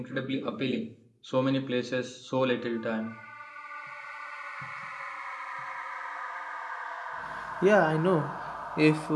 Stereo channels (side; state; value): both; identical; correlation 1.00